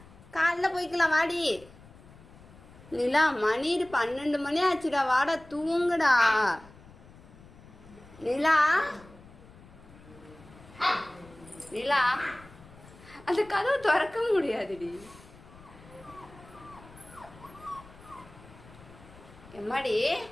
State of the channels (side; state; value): left; noise; rumble, 22 dB below the sound